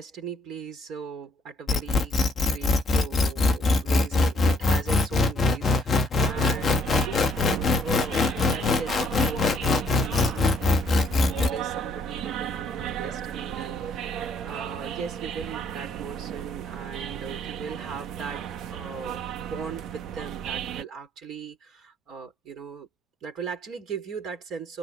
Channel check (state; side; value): normal; both; correlation 0.67